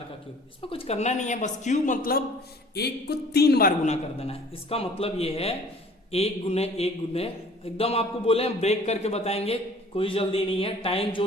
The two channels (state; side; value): normal; both; correlation 0.51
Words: का क्यूब। इसमें कुछ करना नहीं है, बस क्यूब मतलब 1 को 3 बार गुना कर देना है। इसका मतलब ये है 1 गुने 1 गुने, एकदम आपको बोले ब्रेक करके बताएंगे, कोई जल्दी नहीं है, टाइम जो